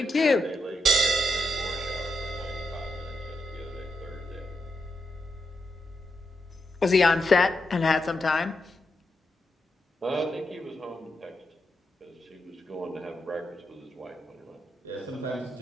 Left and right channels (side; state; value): both; normal; correlation 0.83